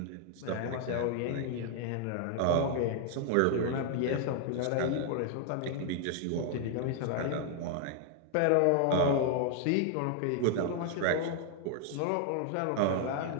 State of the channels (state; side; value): different; both; correlation 0.00